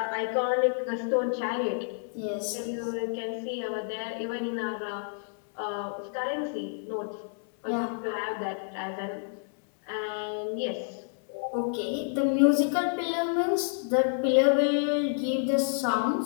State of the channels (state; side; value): silent; right; 58 dB below the other